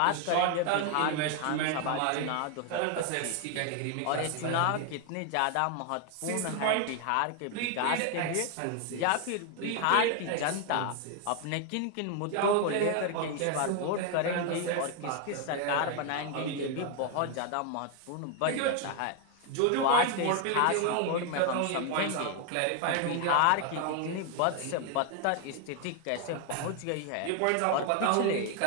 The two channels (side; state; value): both; different; correlation 0.01